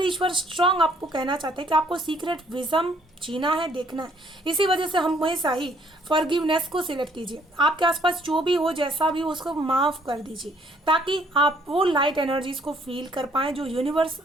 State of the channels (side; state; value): both; normal; correlation 0.64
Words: ईश्वर स्ट्रांग आपको कहना चाहते हैं कि आपको सीक्रेट विजन जीना है, देखना है। इसी वजह से हम हमेशा ही फॉरगिवनेस को सिलेक्ट कीजिए। आपके आसपास जो भी हो, जैसा भी हो, उसको माफ़ कर दीजिए, ताकि आप वो लाइट एनर्जीज को फील कर पाएँ जो यूनिवर्स